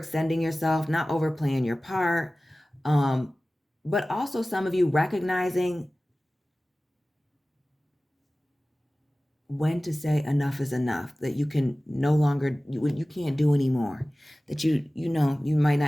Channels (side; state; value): both; normal; correlation 0.97